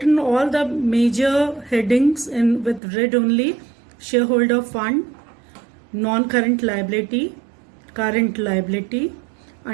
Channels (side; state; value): left; drops out; at 2.8 s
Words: all the major headings in with red only. Shareholder fund, non-current liability, current liability,